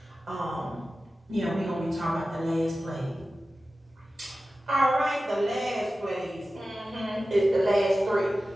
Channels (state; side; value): normal; both; correlation 0.95